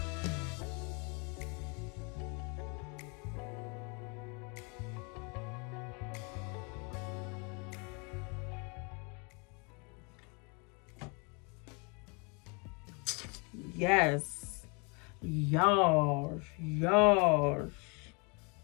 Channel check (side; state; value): right; quieter; 32.4 dB